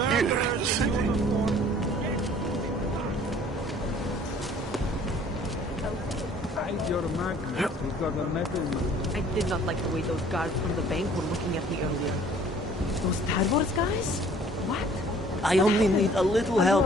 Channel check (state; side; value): normal; both; correlation 0.54